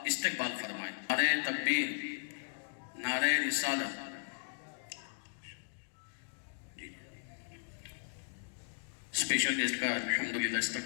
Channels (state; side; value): silent; right; digital silence